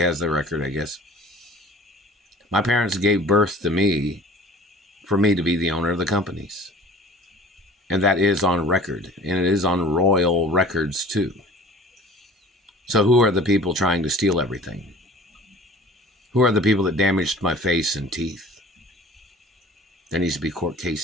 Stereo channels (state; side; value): normal; both; correlation 0.45